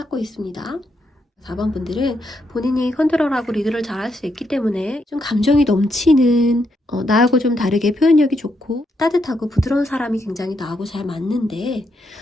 있습니다. 4번 분들은 본인이 컨트롤하고 리드를 잘할 수 있기 때문에 좀 감정이 넘치는 나하고 좀 다르게 표현력이 좋고 따뜻하고 부드러운 사람이 굉장히 나하고 잘 맞는데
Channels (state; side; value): normal; both; correlation 0.79